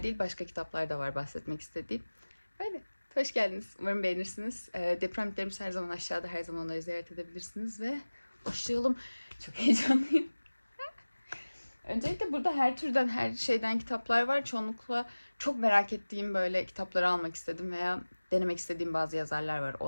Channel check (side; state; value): both; inverted; correlation -1.00